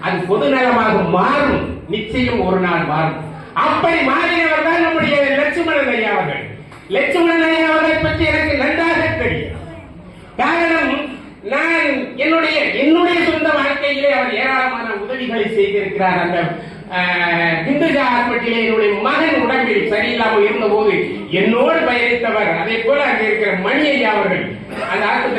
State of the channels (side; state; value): both; identical; correlation 1.00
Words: அது பொது நலமாக மாறும், நிச்சயம் ஒரு நாள் மாறும். அப்படி மாறினவர் தான் நம்முடைய லட்சுமணன் ஐயா அவர்கள். லட்சுமணன் ஐயா அவர்களை பற்றி எனக்கு நன்றாக தெரியும். காரணம், நான் என்னுடைய சொந்த வாழ்க்கையிலே அவர் ஏராளமான உதவிகளை செய்திருக்கிறார். அந்த திண்டுஜா ஹாஸ்பிட்டலே என்னுடைய மகன் உடம்பில் சரியில்லாமல் இருந்த போது என்னோடு பயணித்தவர். அதே போல அங்கே இருக்கிற மணி ஐயா அவர்கள் அந்த